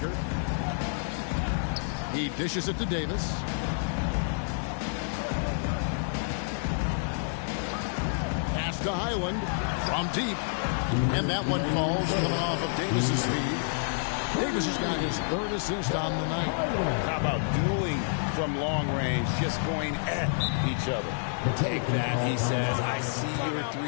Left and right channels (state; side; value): silent; right; digital silence